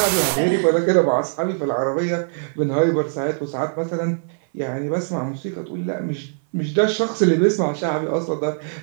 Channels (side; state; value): left; silent; 58 dB below the other